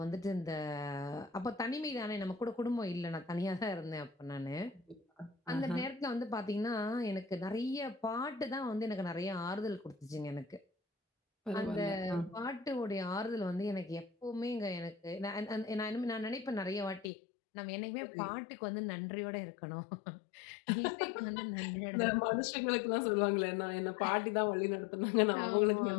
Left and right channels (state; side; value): drops out; right; at 17.1 s